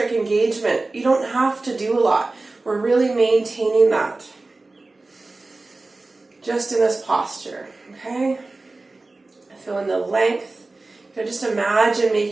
engagement, you don't have to do a lot. We're really maintaining that just in this posture, okay? Feeling the length. Just imagine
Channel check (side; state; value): left; quieter; 3.3 dB